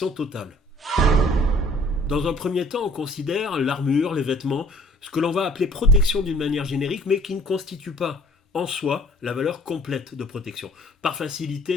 totale. Dans un premier temps, on considère l'armure, les vêtements, ce que l'on va appeler protection d'une manière générique, mais qui ne constitue pas en soi la valeur complète de protection. Par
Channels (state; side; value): normal; both; correlation 0.56